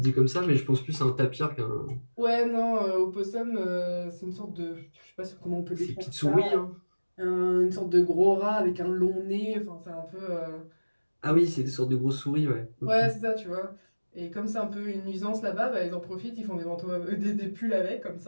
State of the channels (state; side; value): inverted; both; correlation -1.00